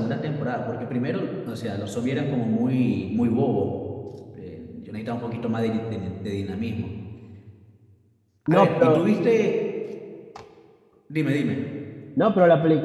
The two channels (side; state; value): both; identical; correlation 1.00